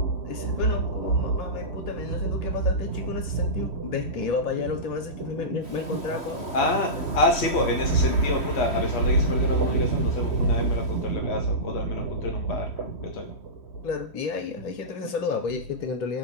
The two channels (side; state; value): right; late; 3.1 ms